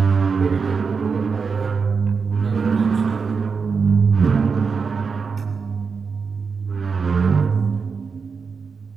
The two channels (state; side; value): quieter; left; 5.3 dB